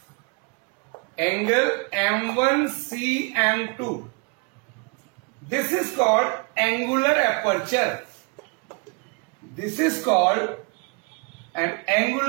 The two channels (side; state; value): left; quieter; 32.3 dB